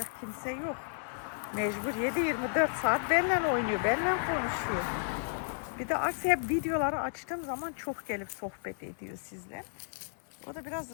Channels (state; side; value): silent; right; 56 dB below the other